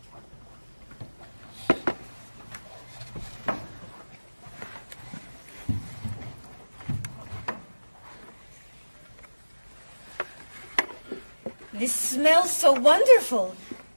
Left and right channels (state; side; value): inverted; both; correlation -1.00